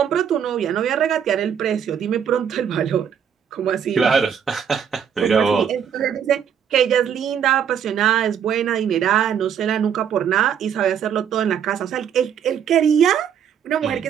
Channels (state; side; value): quieter; left; 8.3 dB